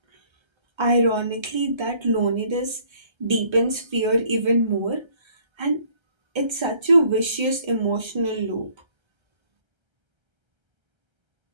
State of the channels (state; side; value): late; left; 1.3 ms